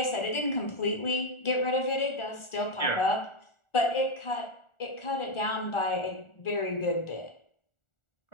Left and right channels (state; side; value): late; right; 1.4 ms